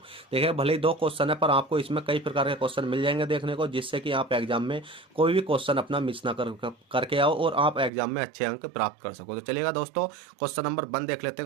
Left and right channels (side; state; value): left; drops out; at 7.9 s